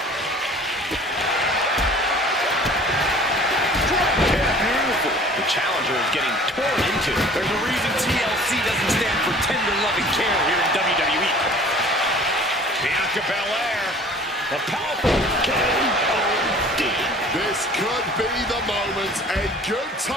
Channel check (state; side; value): normal; both; correlation 0.48